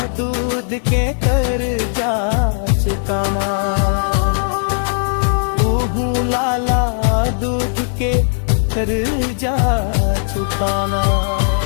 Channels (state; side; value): silent; right; digital silence